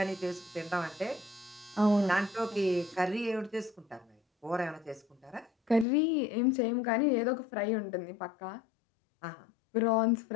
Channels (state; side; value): drops out; right; at 5.9 s